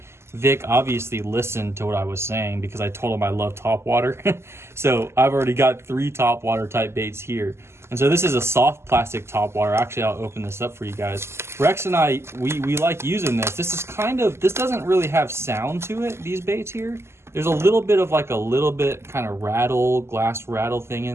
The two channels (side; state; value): left; late; 0.12 ms